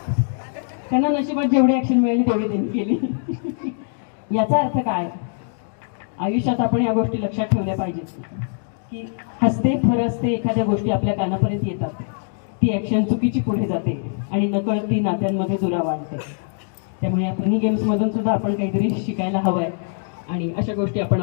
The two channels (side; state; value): right; silent; digital silence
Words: त्यांना नशिबात जेवढी ऍक्शन मिळाली तेवढी त्यांनी केली. याचा अर्थ काय? आयुष्यात आपण या गोष्टी लक्षात ठेवल्या पाहिजेत की हसते फरसते एखाद्या गोष्टी आपल्या कानापर्यंत येतात, ती ऍक्शन चुकीची पुढे जाते आणि नकळत ती नात्यांमध्ये दुरावा आणते. त्यामुळे या फनी गेम्समधून सुद्धा आपण काहीतरी शिकायला हवंय आणि अशा गोष्टी आपण